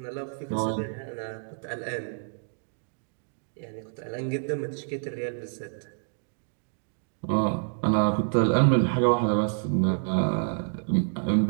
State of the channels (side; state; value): left; silent; digital silence